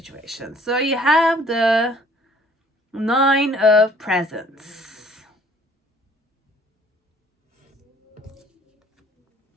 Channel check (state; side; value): normal; both; correlation 0.57